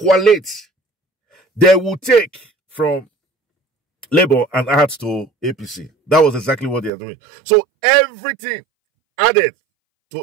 They would take from Labour and add to APC. That was exactly what they are doing. So everything added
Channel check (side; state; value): left; drops out; at 6.9 s